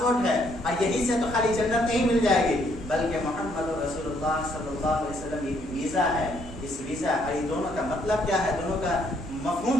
ہے، اور یہیں سے تو خالی جنت نہیں مل جائے گی بلکہ محمد رسول اللہ صلی اللہ علیہ وسلم یہ ویزا ہے۔ اس ویزا یہ دونوں کا مطلب کیا ہے، دونوں کا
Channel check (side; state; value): right; noise; hum, 16 dB below the sound